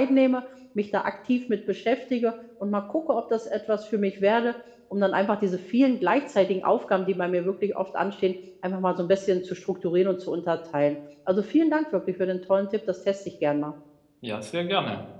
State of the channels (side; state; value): both; identical; correlation 1.00